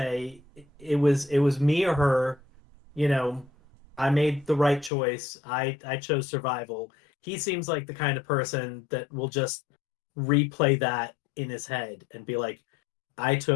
it was me or her. you know I made the right choice. I chose survival. He seems like the kind of person that will just replay that in Oh, his head yeah. and be like, I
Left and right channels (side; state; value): right; drops out; at 4.9 s